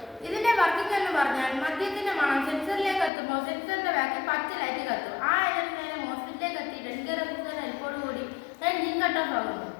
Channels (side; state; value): right; drops out; at 3.1 s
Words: ഇതിന്റെ വർക്കിംഗ് എന്ന് പറഞ്ഞാൽ മദ്യത്തിന്റെ മണം സെൻസറിലേക്ക് എത്തുമ്പോൾ സെൻസറിന്റെ ബാക്കിൽ പച്ച ലൈറ്റ് കത്തും. ആ എനർജി മോസ്ഫെറ്റിലേക്ക് എത്തി 10K റെസിസ്റ്റർ ഹെൽപ്പോടുകൂടി എൻജിൻ കട്ട് ഓഫ് ആകുന്നു.